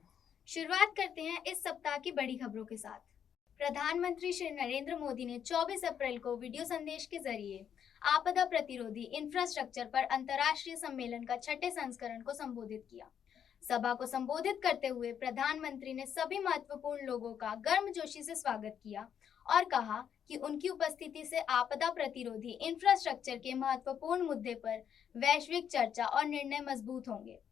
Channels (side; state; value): right; quieter; 8.5 dB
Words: शुरुआत करते हैं इस सप्ताह की बड़ी खबरों के साथ। प्रधानमंत्री श्री नरेंद्र मोदी ने 24 अप्रैल को वीडियो संदेश के जरिए आपदा प्रतिरोधी इंफ्रास्ट्रक्चर पर अंतर्राष्ट्रीय सम्मेलन का छठे संस्करण को संबोधित किया। सभा को संबोधित करते हुए प्रधानमंत्री ने सभी महत्वपूर्ण लोगों का गर्मजोशी से स्वागत किया और कहा कि उनकी उपस्थिति से आपदा प्रतिरोधी इंफ्रास्ट्रक्चर के महत्वपूर्ण मुद्दे पर वैश्विक चर्चा और निर्णय मजबूत होंगे।